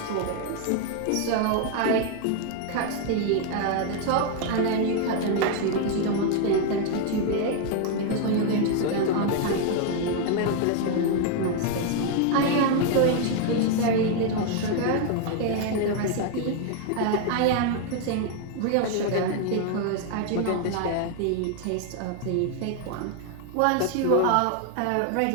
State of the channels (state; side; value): different; both; correlation 0.00